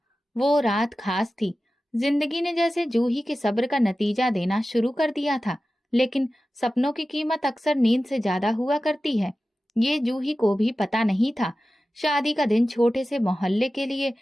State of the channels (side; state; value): both; normal; correlation 0.95